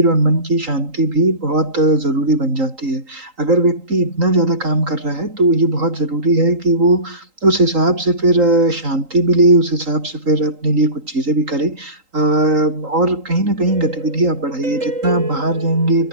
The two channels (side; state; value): left; late; 3.8 ms